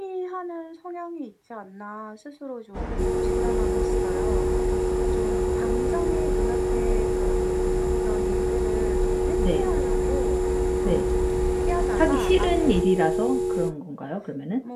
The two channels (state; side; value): identical; both; correlation 1.00